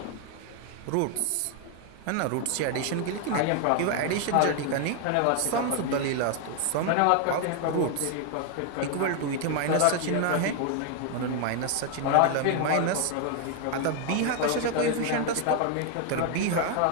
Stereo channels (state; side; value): different; both; correlation 0.00